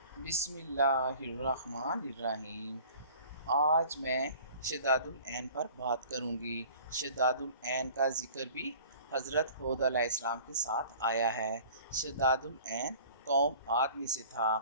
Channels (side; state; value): both; inverted; correlation -0.46